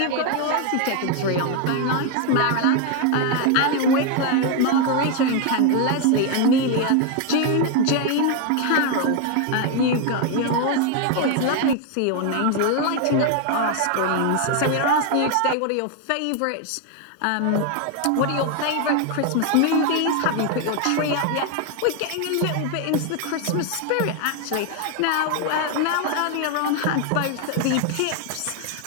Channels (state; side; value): different; both; correlation 0.01